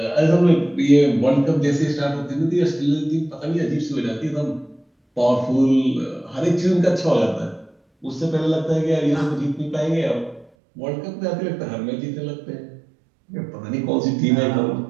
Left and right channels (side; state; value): left; drops out; at 10.5 s